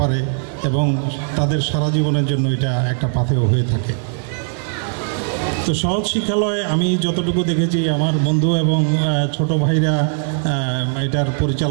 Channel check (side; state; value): left; silent; 65 dB below the other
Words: পারে এবং তাদের সারা জীবনের জন্য এটা একটা পাথেয় হয়ে থাকে। তো সহজ শিক্ষালয়ে আমি যতটুকু দেখেছি, আমার বন্ধু এবং ছোট ভাইরা এটার